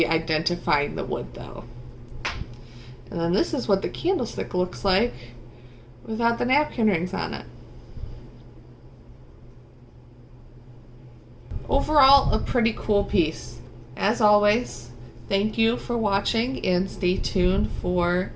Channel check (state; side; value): identical; both; correlation 1.00